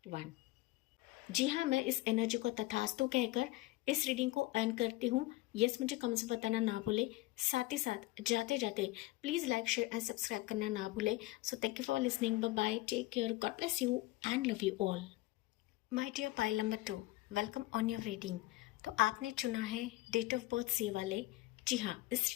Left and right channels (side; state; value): right; quieter; 19.0 dB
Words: 1। जी हाँ, मैं इस एनर्जी को तथास्तु कहकर इस रीडिंग को अर्न करती हूँ। यस, मुझे कमेंट्स में बताना ना भूले, साथ ही साथ जाते जाते please like, share and subscribe करना ना भूले। So thank you for listening, bye bye, take care, God bless you and love you all. My dear pile number 2, welcome on your reading. तो आपने चुना है डेट ऑफ बर्थ सी वाले। जी हाँ, इस